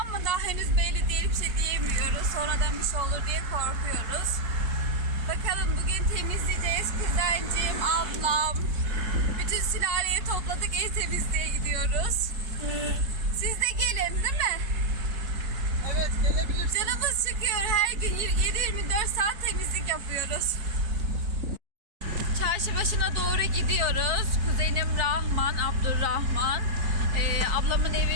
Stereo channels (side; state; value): left; late; 4.5 ms